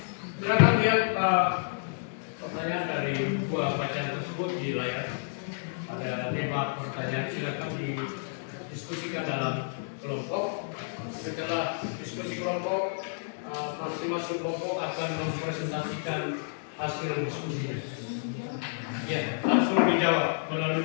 Silakan lihat pertanyaan dari buah bacaan tersebut di layar. Ada 5 pertanyaan, silakan didiskusikan dalam kelompok. Setelah diskusi kelompok, masing-masing kelompok akan mempresentasikan hasil diskusinya. Ya, langsung dijawab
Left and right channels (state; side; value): silent; right; digital silence